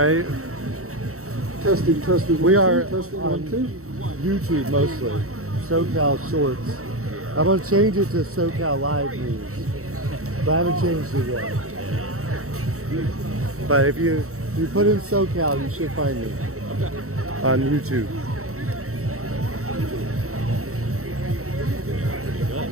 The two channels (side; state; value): left; late; 0.64 ms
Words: Testing. We are testing on 1 2. YouTube mostly. SoCal Shorts. I'm gonna change it to SoCal Live News, but I haven't changed it yet. But if you put in SoCal, you should find me on YouTube.